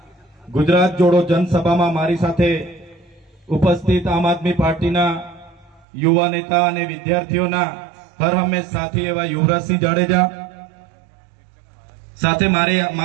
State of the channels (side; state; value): left; drops out; at 5.9 s